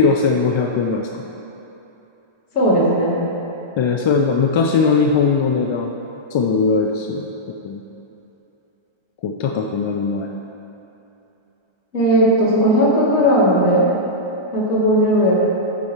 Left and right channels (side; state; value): right; late; 1.3 ms